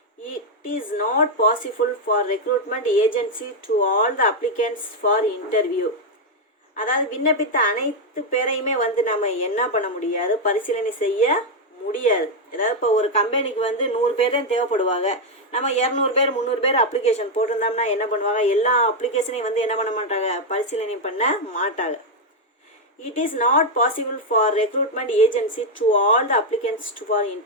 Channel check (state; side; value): normal; both; correlation 0.02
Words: it is not possible for recruitment agency to all the applicants for interview. அதாவது விண்ணப்பித்த அனைத்து பேரையுமே வந்து நம்ம என்ன பண்ண முடியாது பரிசீலனை செய்ய முடியாது. அதாவது இப்போ ஒரு கம்பெனிக்கு வந்து 100 பேர் தான் தேவைப்படுவாங்க. நம்ம 200 பேர் 300 பேர் அப்ளிகேஷன் போட்டிருந்தோம்னா என்ன பண்ணுவாங்க எல்லா அப்ளிகேஷனையும் வந்து என்ன பண்ண மாட்டாங்க பரிசீலனை பண்ண மாட்டாங்க. It is not possible for recruitment agency to all the applicants for